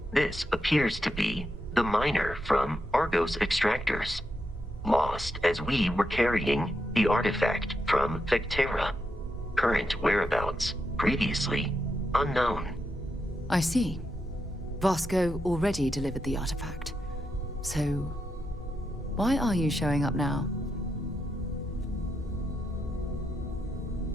This appears to be the miner from Argos Extractors. Lost as we were carrying the artifact from Vectera. Current whereabouts, previously unknown. I see. Vasco already delivered the artifact. So, why are you showing up now?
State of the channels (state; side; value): normal; both; correlation 0.83